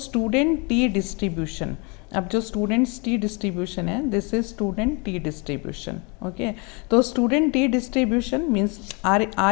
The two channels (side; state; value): right; quieter; 31.7 dB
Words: student T distribution, अब जो students T distribution है this is student T distribution. Okay, तो student T distribution means